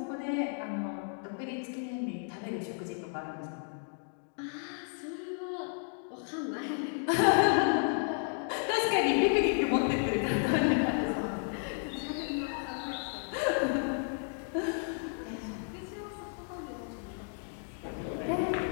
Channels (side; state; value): right; silent; 56 dB below the other